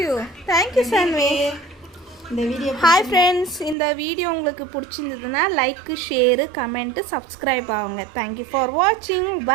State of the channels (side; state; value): left; drops out; at 3.8 s